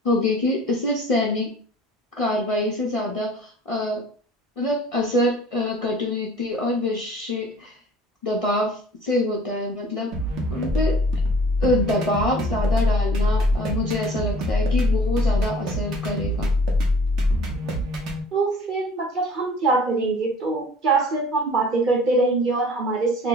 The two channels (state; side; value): normal; both; correlation 0.49